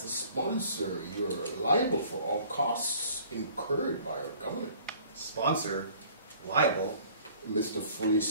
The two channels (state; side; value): inverted; both; correlation -0.53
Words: the sponsor, you're liable for all costs incurred by our government. Sponsor, liable. Mr. Fully